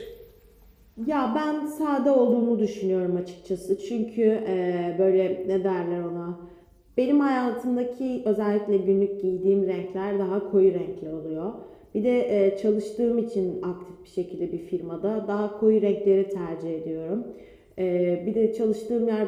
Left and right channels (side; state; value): both; identical; correlation 1.00